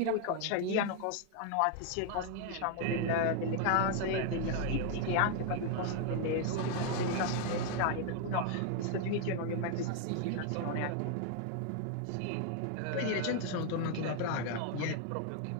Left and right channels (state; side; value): different; both; correlation 0.00